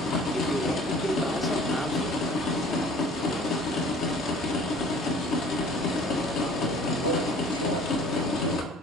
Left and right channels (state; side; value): normal; both; correlation 0.49